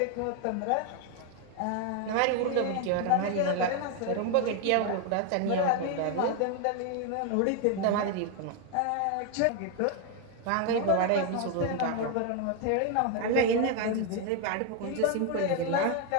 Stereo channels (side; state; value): both; different; correlation 0.01